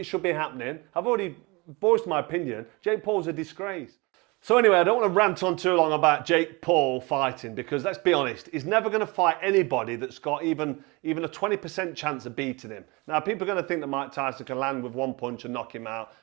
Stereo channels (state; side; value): quieter; left; 26.0 dB